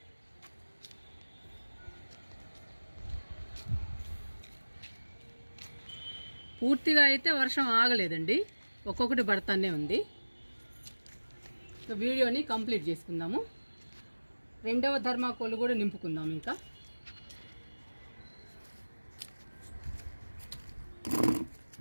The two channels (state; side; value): inverted; both; correlation -1.00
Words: పూర్తిగా అయితే వర్షం ఆగలేదండి, ఒక్కొక్కటి పడతానే ఉంది. వీడియోని కంప్లీట్ చేసుకుందాము. రెండవ ధర్మాకోల్ కూడా నింపుకుందాం. ఇంకా